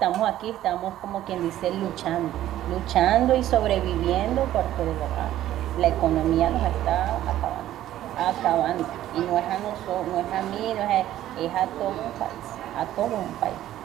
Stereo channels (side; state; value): left; quieter; 13.1 dB